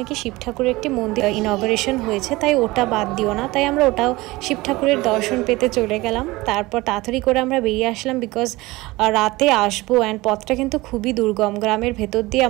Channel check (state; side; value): quieter; left; 20.7 dB